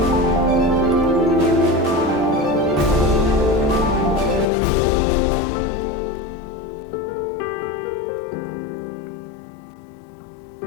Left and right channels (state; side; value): drops out; right; at 4.5 s